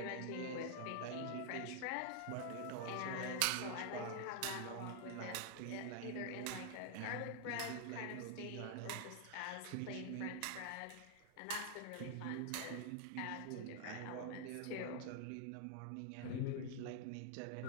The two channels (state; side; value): different; both; correlation 0.00